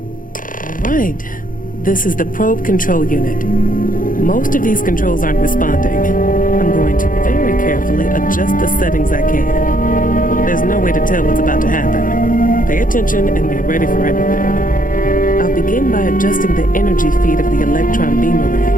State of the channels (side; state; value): right; late; 0.39 ms